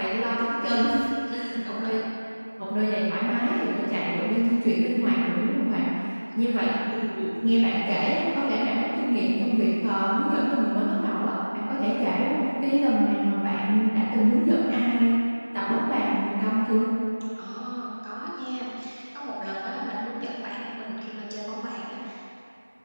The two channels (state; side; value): inverted; both; correlation -1.00